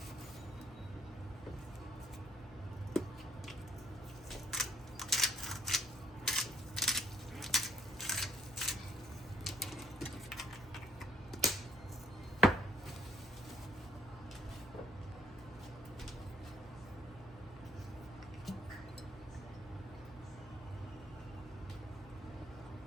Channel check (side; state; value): both; normal; correlation 0.65